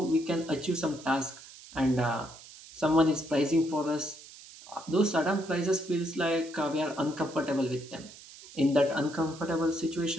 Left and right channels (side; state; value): right; noise; hiss, 18 dB below the sound